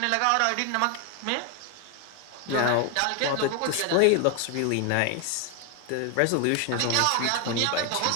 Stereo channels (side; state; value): both; different; correlation 0.01